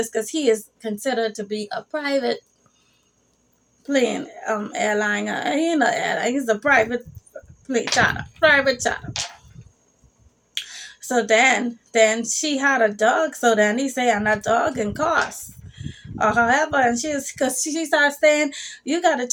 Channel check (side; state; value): both; identical; correlation 1.00